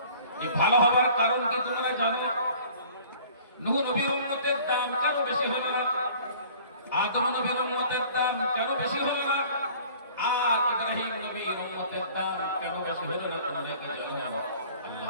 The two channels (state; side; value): inverted; both; correlation -0.49